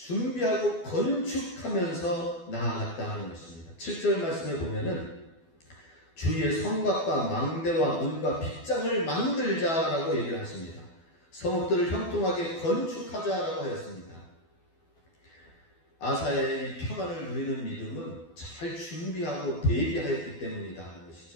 건축하면서 나아갔다는 것입니다. 7절 말씀에 보면은 주위에 성곽과 망대와 문과 빗장을 만들자라고 얘기를 하십니다. 성읍들을 형통하게 건축하자라고 하였습니다. 아사의 이 평안을 누리는 믿음은 잘 준비하고 대비하였기 때문이다 하는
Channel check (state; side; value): late; right; 12 ms